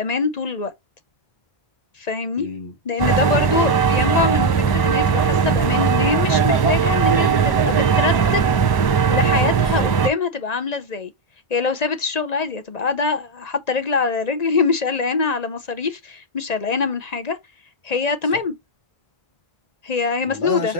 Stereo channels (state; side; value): late; right; 1.0 ms